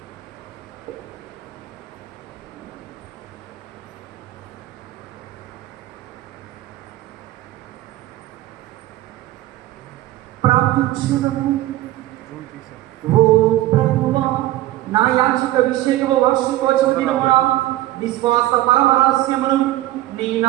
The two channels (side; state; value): left; quieter; 15.5 dB